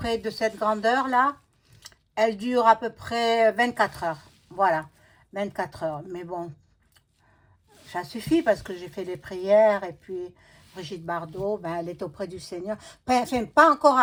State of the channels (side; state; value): both; identical; correlation 1.00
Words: de cette grandeur-là. Elle dure à peu près 24 heures. Voilà, 24 heures. Mais bon, ça suffit parce que j'ai fait les prières et puis Brigitte Bardot, ben, elle est auprès du Seigneur. Enfin, pas encore